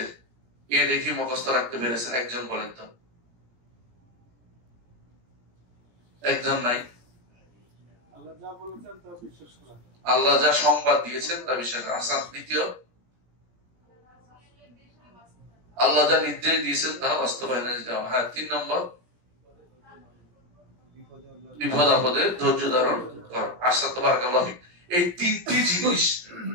এ দেখি মুখস্থ রাখতে পেরেছেন? একজন বলেন তো। একজন নাই। আল্লাহ যা সংবাদ দিয়েছেন তা বিশ্বাস করা। আচ্ছা, দ্বিতীয়, আল্লাহ যা নির্দেশ দিয়েছেন তা বাস্তবায়নে যাওয়া। হ্যাঁ, 3 নম্বর বিপদ আপদে ধৈর্য ধারণ করা। আশা তো বারাকাল্লাহ ফিক। এই 3টি জিনিস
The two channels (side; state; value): left; late; 17 ms